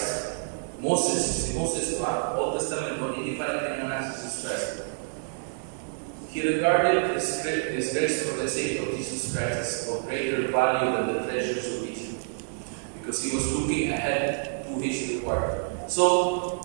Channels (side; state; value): left; silent; digital silence